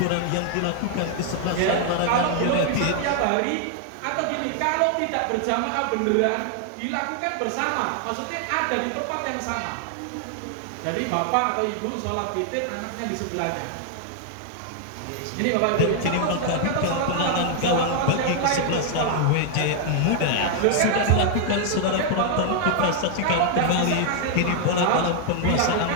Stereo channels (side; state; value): both; different; correlation 0.00